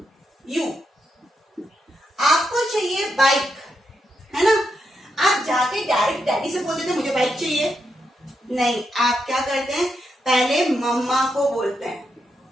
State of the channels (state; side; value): normal; both; correlation 0.83